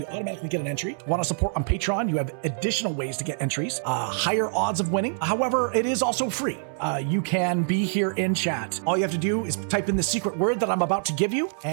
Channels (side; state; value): left; silent; digital silence